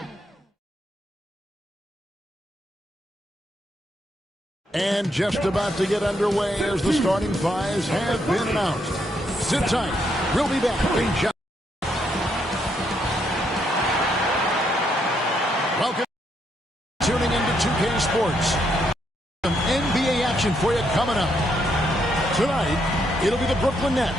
And just about to get underway as the starting fives have been announced. Sit tight. We'll be back in just... Welcome. Tuning into 2K Sports. Some NBA action for you coming up. Tonight, it'll be the Brooklyn Nets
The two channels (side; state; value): both; normal; correlation 0.76